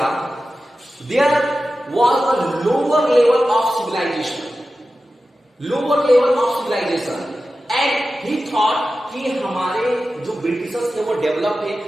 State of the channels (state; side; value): normal; both; correlation 0.93